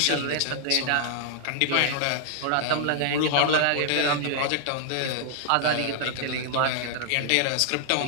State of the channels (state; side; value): different; both; correlation -0.01